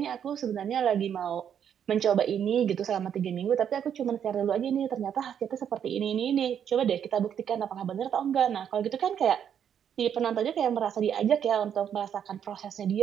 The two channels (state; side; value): quieter; left; 8.7 dB